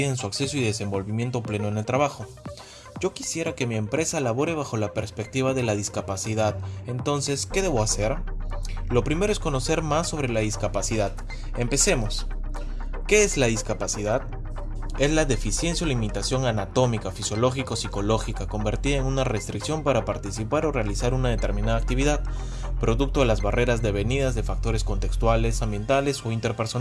su acceso y desenvolvimiento pleno en el trabajo. Yo quisiera que mi empresa labore bajo la perspectiva de la discapacidad, entonces, ¿qué debo hacer? Lo primero es conocer más sobre la discapacidad. Empecemos. ¿Qué es la discapacidad? Es la deficiencia o limitación anatómica, fisiológica o psicológica convertida en una restricción para participar o realizar una determinada actividad, producto de las barreras devenidas de factores contextuales, ambientales o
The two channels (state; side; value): identical; both; correlation 1.00